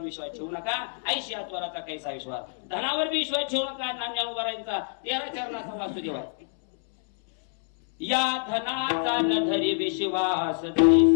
विश्वास ठेवू नका. ऐशी आत्वराचा कैसा विश्वास. धनावर बी विश्वास ठेवू नका. नांद्या उभारायचा 13 चरणाचा वासुदेव. या धनाचा न धरी विश्वास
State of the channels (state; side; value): silent; right; 60 dB below the other